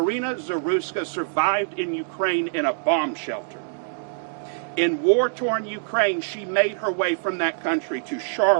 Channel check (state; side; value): silent; left; digital silence